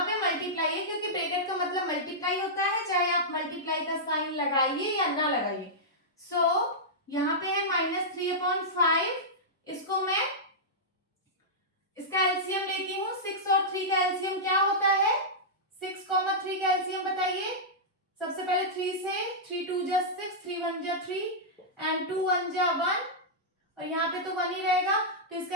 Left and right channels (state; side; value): normal; both; correlation -0.11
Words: पे मल्टीप्लाई है क्योंकि ब्रैकेट का मतलब मल्टीप्लाई होता है, चाहे आप मल्टीप्लाई का साइन लगाइए या ना लगाइए। सो यहाँ पे है -3/5, इसको मैं इसका एलसीएम लेती हूँ। 6 और 3 का एलसीएम क्या होता है? 6, 3 का एलसीएम बताइए। सबसे पहले 3 से 3 2 जा 6, 3 1 जा 3 एंड 2 1 जा 1, और यहाँ पे तो 1 ही रहेगा तो